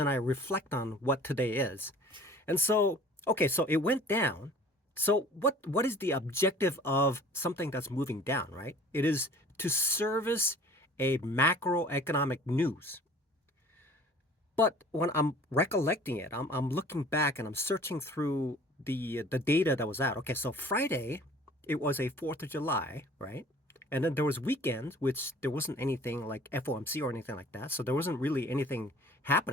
I reflect on what today is. And so, okay, so it went down. So what is the objective of something that's moving down, right? It is to service a macroeconomic news. But when I'm recollecting it, I'm looking back and I'm searching through the data that was out. Okay, so Friday, it was a 4th of July, right? And then there was weekends, which there wasn't anything like FOMC or anything like that. So there wasn't really anything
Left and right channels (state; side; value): normal; both; correlation 0.49